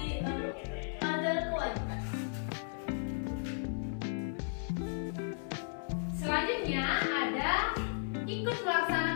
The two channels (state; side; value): silent; right; 54 dB below the other